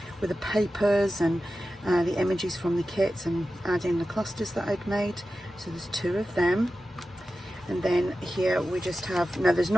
with the papers and the images from the kits and adding the clusters that I'd made. So there's 2 of them. And then here we just have, now there's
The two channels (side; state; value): both; normal; correlation 0.93